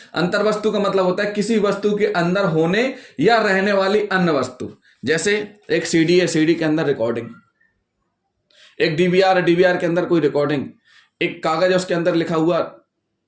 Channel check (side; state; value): both; identical; correlation 1.00